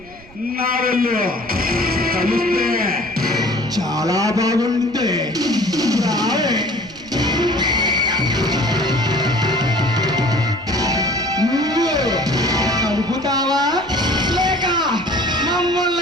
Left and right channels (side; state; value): right; noise; rumble, 23 dB below the sound